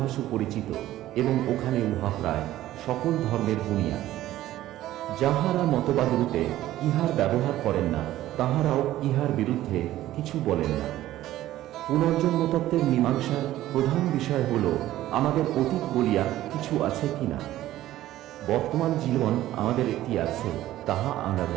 সুপরিচিত এবং ওখানে উহা প্রায় সকল ধর্মের বুনিয়াদ। যাহারা মতবাদরূপে ইহার ব্যবহার করেন না, তাহারাও ইহার বিরুদ্ধে কিছু বলেন না। পুনর্জন্মতত্ত্বের মীমাংসার প্রধান বিষয় হল আমাদের অতীত বলিয়া কিছু আছে কিনা। বর্তমান জীবন আমাদের একটি আছে, তাহা আমরা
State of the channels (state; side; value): quieter; left; 14.4 dB